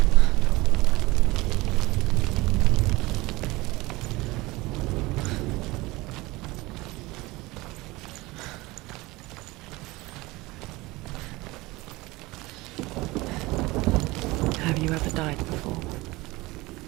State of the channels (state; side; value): quieter; left; 21.3 dB